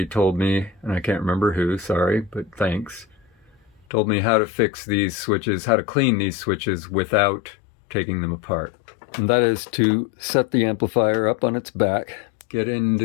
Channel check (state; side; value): drops out; right; at 3.8 s